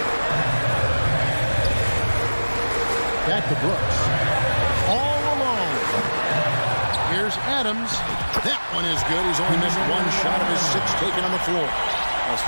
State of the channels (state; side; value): inverted; both; correlation -1.00